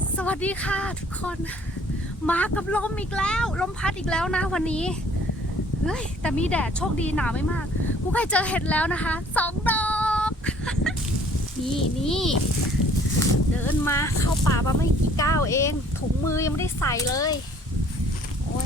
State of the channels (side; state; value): both; normal; correlation 0.57